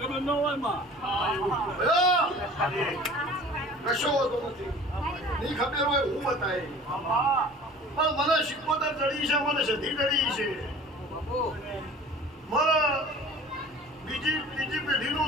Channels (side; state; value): both; normal; correlation 0.45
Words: ન હોય માં કશો હોતો નથી. નહીં ખબર હોય હું બતાય પણ મને શિકોતર ચડી છે, મને સધી ચડી છે, મારા બીજી પેઢીનું